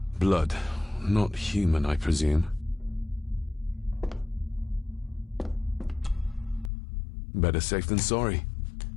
Blood. Not human, I presume. Better safe than sorry.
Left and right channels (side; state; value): right; drops out; at 6.7 s